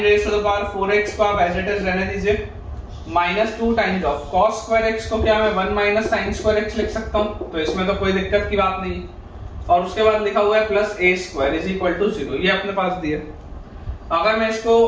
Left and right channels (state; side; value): identical; both; correlation 1.00